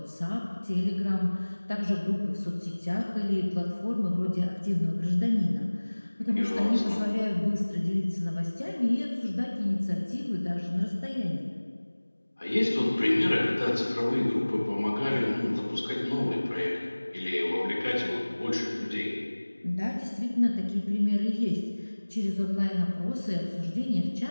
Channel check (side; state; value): both; inverted; correlation -1.00